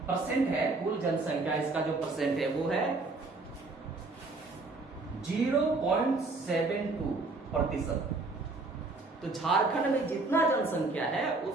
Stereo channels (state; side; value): quieter; left; 3.5 dB